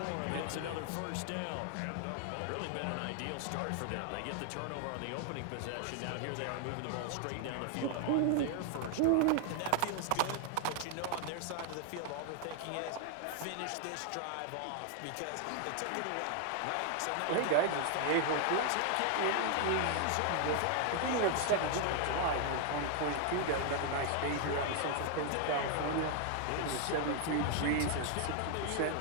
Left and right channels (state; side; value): different; both; correlation 0.00